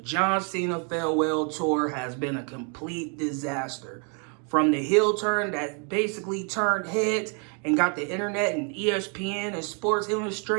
Cena farewell tour has been a complete disaster. From the heel turn that basically turned heads and got the internet and ESPN and Sports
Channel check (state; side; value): quieter; left; 38.5 dB